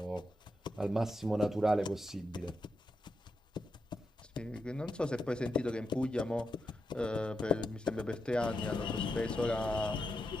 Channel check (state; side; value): normal; both; correlation 0.85